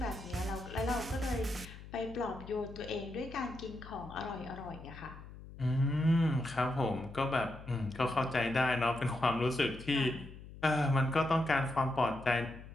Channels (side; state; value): left; noise; hum, 15 dB below the sound